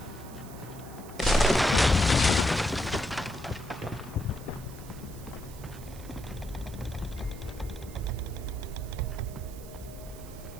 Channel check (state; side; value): noise; right; hiss, 19 dB below the sound